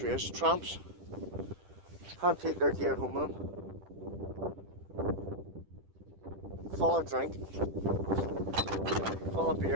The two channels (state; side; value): late; left; 10 ms